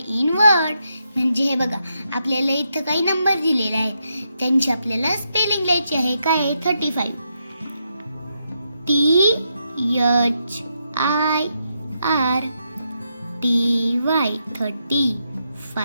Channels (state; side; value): inverted; both; correlation -0.82